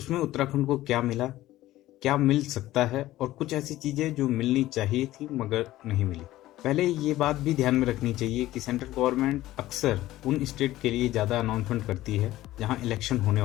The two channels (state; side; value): quieter; right; 15.6 dB